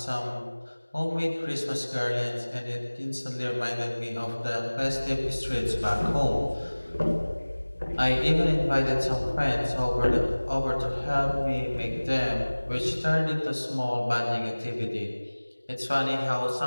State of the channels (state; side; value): inverted; both; correlation -1.00